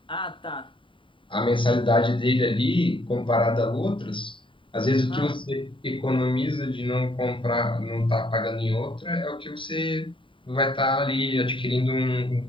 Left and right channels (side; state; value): right; late; 0.25 ms